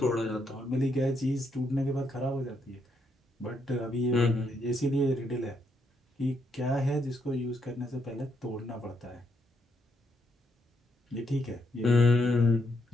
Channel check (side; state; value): both; normal; correlation 0.77